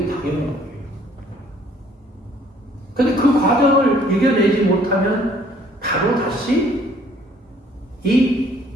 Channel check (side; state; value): both; normal; correlation 0.60